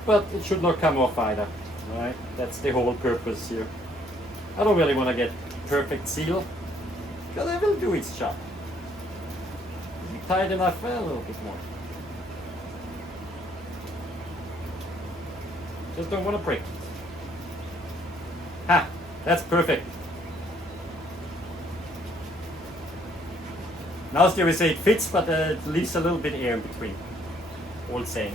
But it should not come off either, right? That's the whole purpose here. I don't really want to get perfect seal because it will do its job. Is it tight enough? Well, a little bit more. Just don't want to break it. Ha! That's perfect. Now still we say it fits, but it leaves a little bit air in between. Old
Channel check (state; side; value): noise; right; hum, 22 dB below the sound